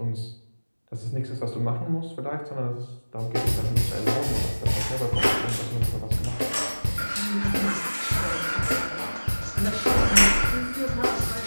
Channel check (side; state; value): both; inverted; correlation -1.00